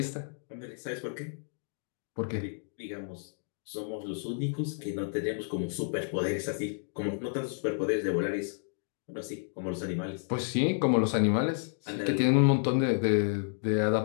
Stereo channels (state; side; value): silent; right; digital silence